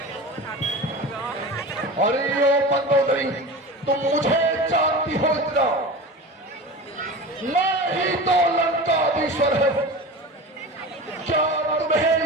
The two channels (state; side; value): normal; both; correlation 0.31